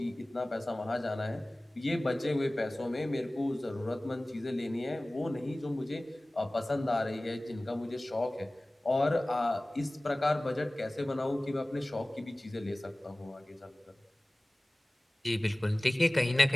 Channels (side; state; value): both; normal; correlation 0.98